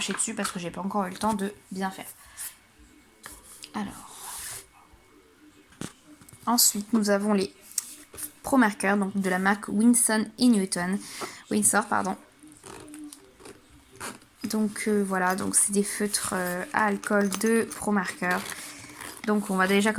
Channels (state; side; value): identical; both; correlation 1.00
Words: dessus parce que j'ai pas encore eu le temps de bien faire. Alors, ensuite nous avons les Pro Marker, donc de la marque Winsor et Newton. Windsor, pardon. Donc voilà, donc c'est des feutres à alcool de Pro Marker. Donc on va déjà